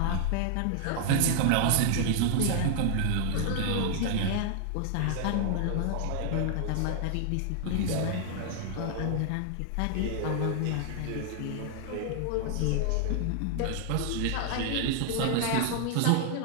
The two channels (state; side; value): different; both; correlation 0.00